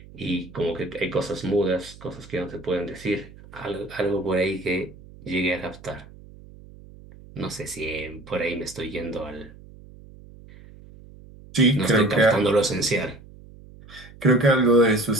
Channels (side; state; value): right; noise; hum, 20 dB below the sound